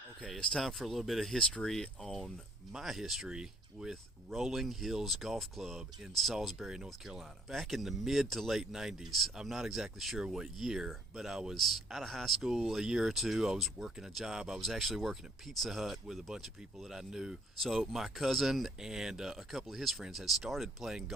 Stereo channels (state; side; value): normal; both; correlation 0.62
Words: Okay, it's time for a little bit of history on my history with Rolling Hills Golf Club in Salisbury, North Carolina. Back in the mid to late 90s, I'm not exactly sure what year, but I was out of high school a year or two. I was working a job. I was actually working at Pizza Hut with a bunch of people that I knew. So my cousin and a couple of his friends had started playing